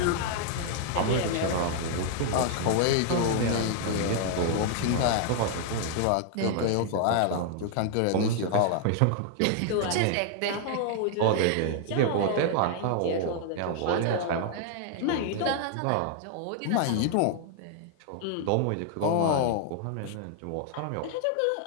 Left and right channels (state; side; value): different; both; correlation 0.00